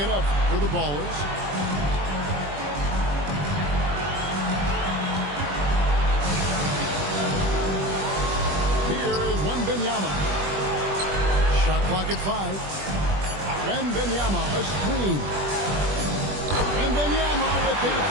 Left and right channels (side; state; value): left; late; 21 ms